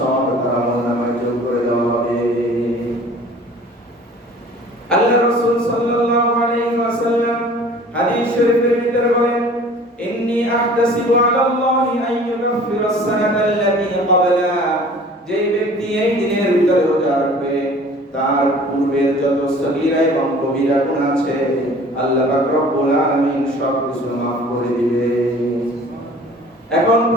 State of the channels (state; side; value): normal; both; correlation 0.47